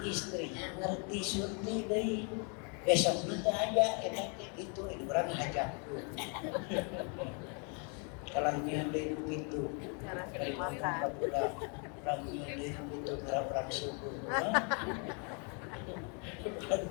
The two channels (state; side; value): quieter; right; 37.4 dB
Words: istrinya ngerti surti deh. Besok nanti aja itu orang ngajak. Kalau nyanda itu dari makan orang nyanda itu orang subuh.